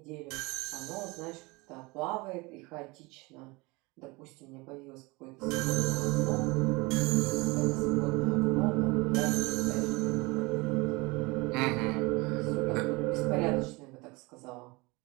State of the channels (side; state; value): left; quieter; 24.9 dB